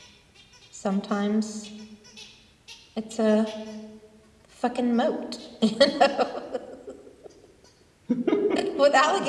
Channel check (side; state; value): both; identical; correlation 1.00